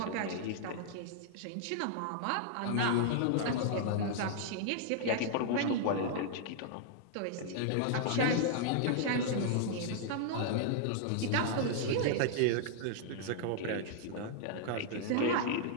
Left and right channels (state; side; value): different; both; correlation -0.01